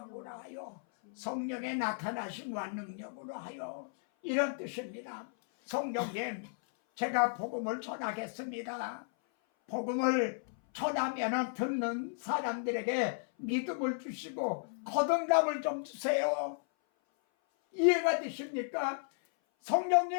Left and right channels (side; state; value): right; silent; 55 dB below the other